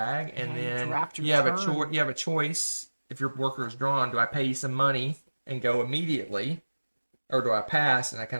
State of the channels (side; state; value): both; inverted; correlation -1.00